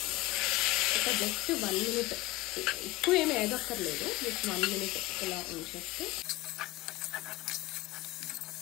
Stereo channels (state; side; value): quieter; right; 18.4 dB